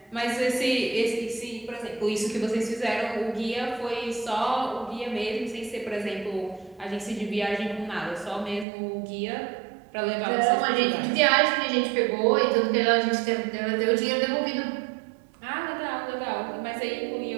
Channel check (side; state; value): left; drops out; at 8.7 s